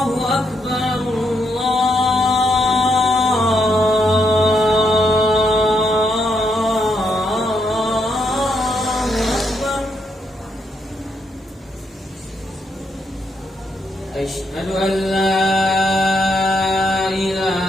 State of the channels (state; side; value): normal; both; correlation 0.78